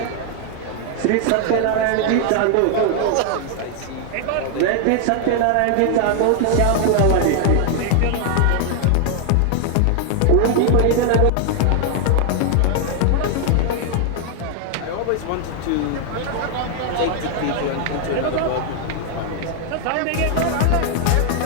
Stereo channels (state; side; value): different; both; correlation 0.00